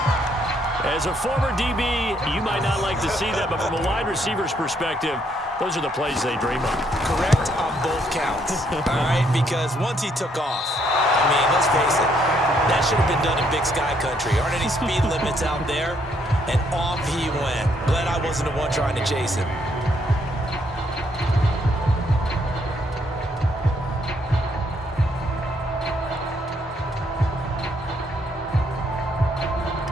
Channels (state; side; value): normal; both; correlation 0.71